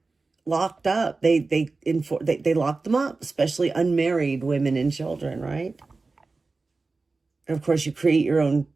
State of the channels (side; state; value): left; quieter; 3.8 dB